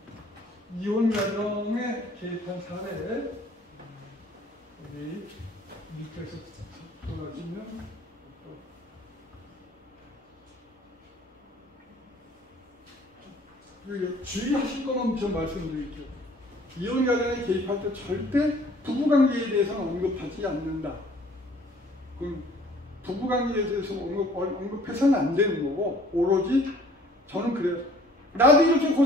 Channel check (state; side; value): normal; both; correlation 0.55